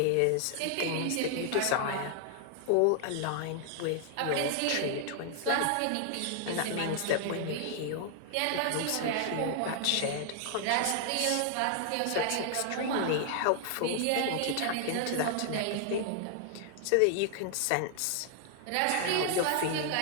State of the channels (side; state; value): both; different; correlation 0.00